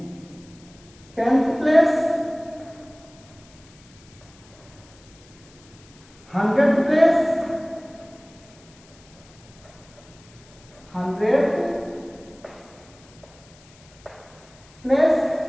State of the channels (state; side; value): noise; left; hiss, 26 dB below the sound